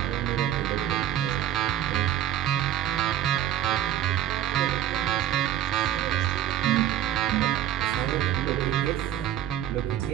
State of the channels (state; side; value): quieter; left; 11.1 dB